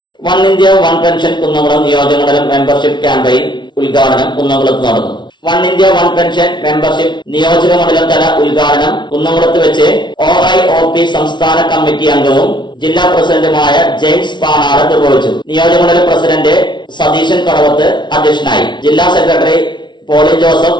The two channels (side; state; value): right; late; 0.22 ms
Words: One India one pension Kunnamkulam നിയോജകമണ്ഡലം മെമ്പർഷിപ്പ് ക്യാമ്പയിൻ ഉദ്ഘാടനം കുന്നംകുളത്ത് നടന്നു. One India one pension membership നിയോജകമണ്ഡലം തല ഉദ്ഘാടനം കുന്നംകുളത്ത് വെച്ച് OIOP സംസ്ഥാന കമ്മിറ്റി അംഗവും ജില്ലാ പ്രസിഡന്റുമായ ജെയിംസ് പാണാട് നിർവഹിച്ചു. നിയോജകമണ്ഡലം പ്രസിഡന്റ് സതീശൻ കടവത്ത് അധ്യക്ഷനായി. ജില്ലാ സെക്രട്ടറി പോളി